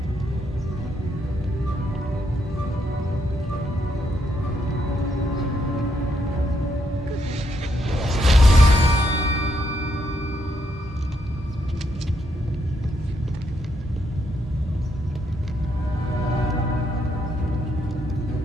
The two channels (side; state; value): both; normal; correlation 0.77